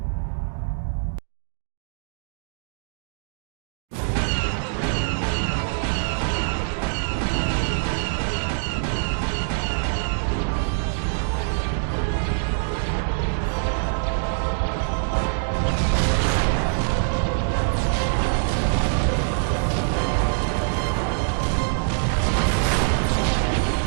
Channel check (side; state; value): left; silent; digital silence